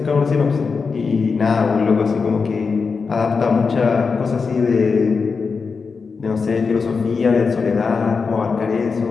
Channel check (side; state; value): right; quieter; 5.0 dB